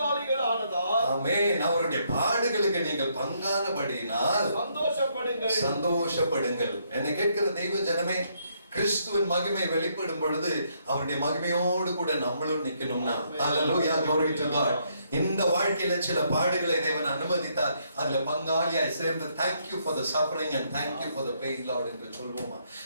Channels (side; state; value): both; inverted; correlation -0.73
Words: ஆனதால், ஆமென், அவருடைய பாடுகளுக்கு நீங்கள் பங்கானபடியினால் சந்தோஷப்படுங்கள். என்னை கேட்கிற தெய்வ ஜனமே, கிறிஸ்துவின் மகிமை வெளிப்படும் பொழுது அவருடைய மகிமையோடு கூட நம்மளும் நிக்கணும்னா, ஹalleluya, glory to God. இந்த வாழ்க்கையில சில பாடுகளை தேவன் அனுமதித்தார். அதுல பங்காளியாய் சேர்ந்து thank you for the suffering and thank you for the pain Lord என்று சொல்வோமா?